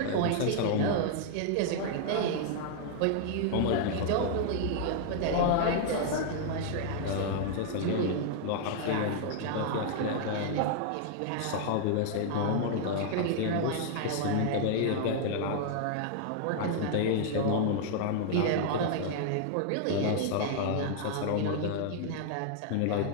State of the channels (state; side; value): different; both; correlation 0.00